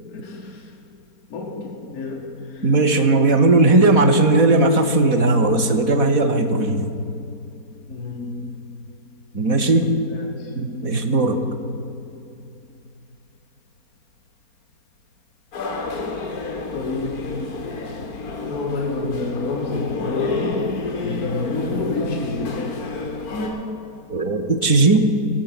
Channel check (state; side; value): late; right; 4.1 ms